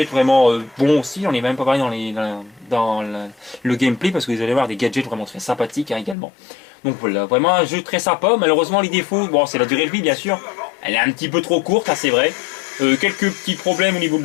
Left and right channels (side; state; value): right; drops out; at 6.2 s